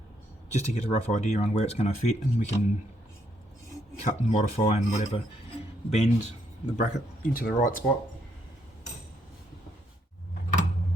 just to get a rough idea on where it's going to fit, and we can cut and modify and whatever, bend the bracket into the right spot.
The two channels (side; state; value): both; normal; correlation 0.73